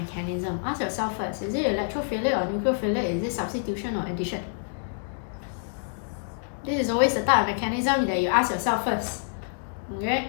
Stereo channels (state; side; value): silent; right; digital silence